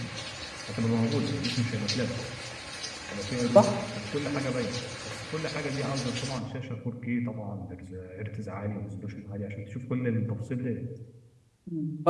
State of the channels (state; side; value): identical; both; correlation 1.00